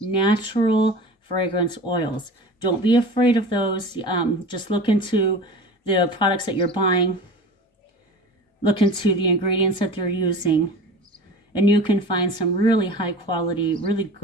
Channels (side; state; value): both; normal; correlation 0.36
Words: fragrance oils. Don't be afraid of those. Just look into the products that you're buying. Look into the ingredients that they're using. And you can find some really high quality, really